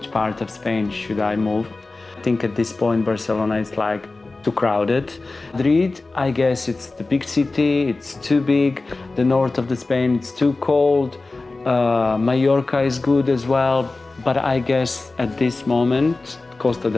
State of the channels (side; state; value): right; quieter; 3.4 dB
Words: part of Spain should I move. I think at this point Barcelona is like too crowded. Madrid, I guess it's the big city, it's too big. The north of the Spain, it's too cold. Mallorca is good as well, but I guess at this moment Costa